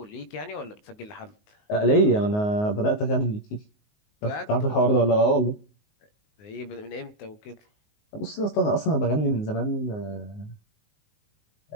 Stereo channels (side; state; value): right; late; 19 ms